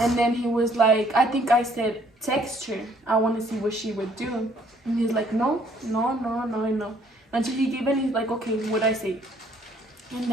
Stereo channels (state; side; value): normal; both; correlation 0.63